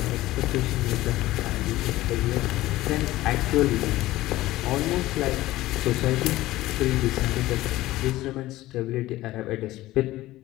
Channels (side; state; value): right; quieter; 16.8 dB